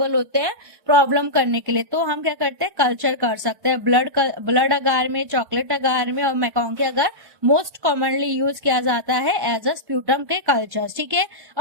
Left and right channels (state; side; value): late; left; 1.1 ms